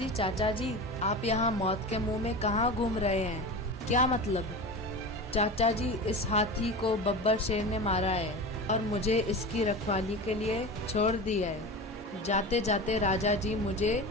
जी, आप यहाँ मौत के मुंह में कहाँ घूम रहे हैं? क्या मतलब? चाचा जी, इस हाथी को बब्बर शेर ने मारा है और मुझे इसकी रखवाली के लिए छोड़ दिया है। जाते जाते राजा जी मुझे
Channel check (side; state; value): both; normal; correlation 0.29